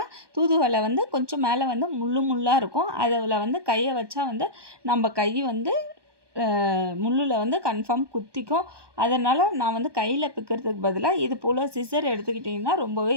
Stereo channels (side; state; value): left; late; 1.2 ms